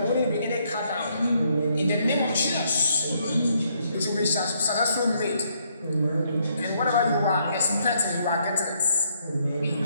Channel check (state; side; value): inverted; both; correlation -0.72